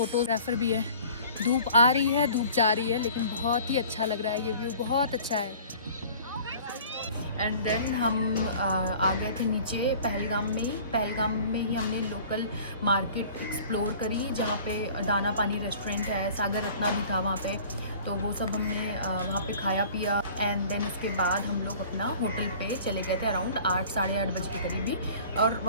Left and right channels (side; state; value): both; inverted; correlation -0.47